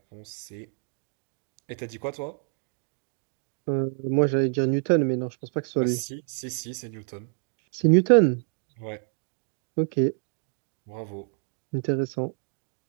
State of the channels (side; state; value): left; silent; 59 dB below the other